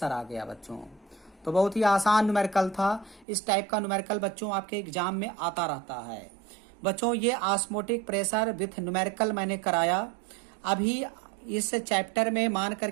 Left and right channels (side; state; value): left; drops out; at 3.2 s